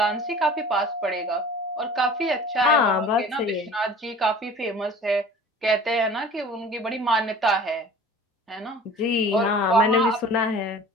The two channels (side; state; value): both; normal; correlation 0.44